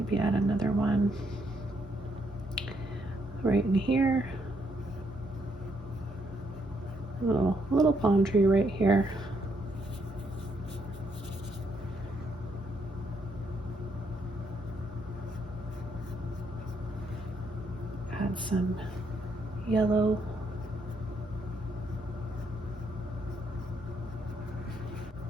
add another one right in here. A little palm tree right here. Add some yellow.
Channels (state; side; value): normal; both; correlation 0.74